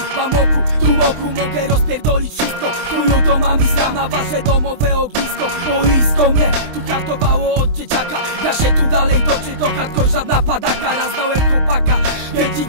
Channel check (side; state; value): left; late; 20 ms